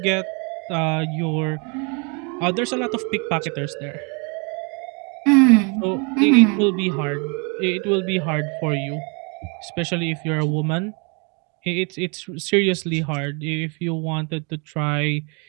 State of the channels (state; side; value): quieter; left; 33.8 dB